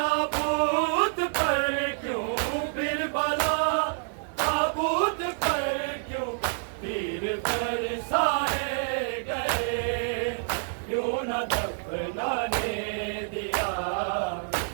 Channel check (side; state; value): left; silent; 57 dB below the other